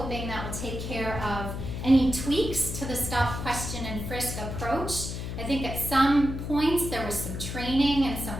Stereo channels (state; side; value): noise; left; hum, 6 dB below the sound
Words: that will take care of any tweaks to the stop, question, and frisk approach. I think at some points there was some training and some